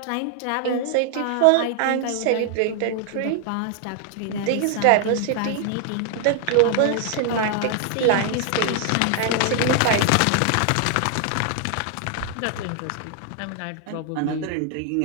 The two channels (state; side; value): different; both; correlation 0.00